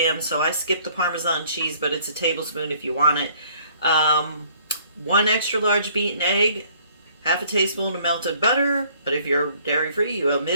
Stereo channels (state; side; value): inverted; both; correlation -0.59